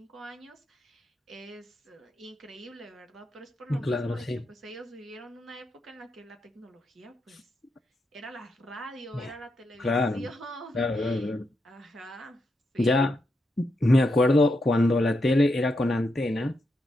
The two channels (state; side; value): normal; both; correlation 0.83